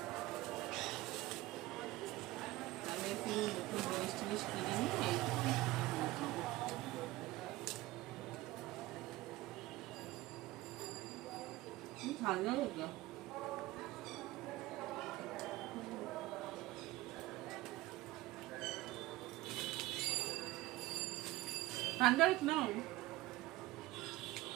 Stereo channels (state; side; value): quieter; left; 18.3 dB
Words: আমি একটু নতুন জিনিস টিনিস কিনে নিই। ঠান্ডা হতো ঠান্ডা নাও।